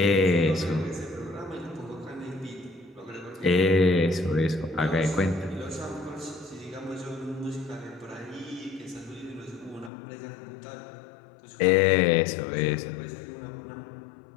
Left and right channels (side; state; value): right; drops out; at 9.9 s